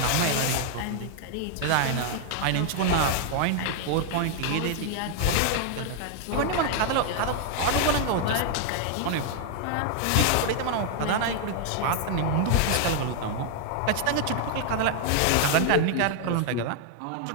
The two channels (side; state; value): both; different; correlation 0.00